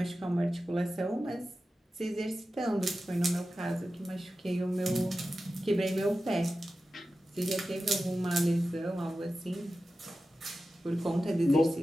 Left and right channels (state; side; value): normal; both; correlation 0.93